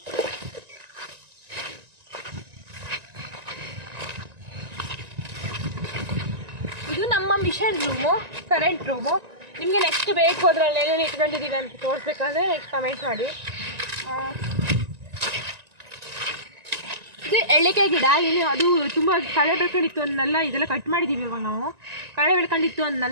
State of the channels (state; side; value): late; left; 1.9 ms